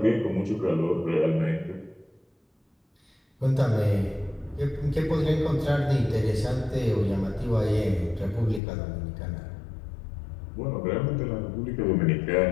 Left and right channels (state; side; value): drops out; right; at 8.6 s